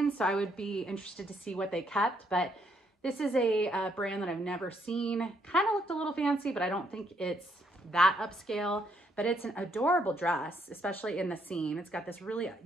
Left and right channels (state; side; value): normal; both; correlation 0.72